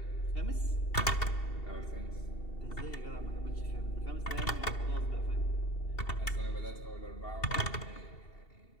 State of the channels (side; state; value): right; late; 2.7 ms